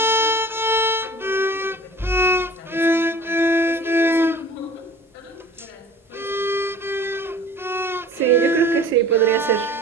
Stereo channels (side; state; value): both; normal; correlation 0.44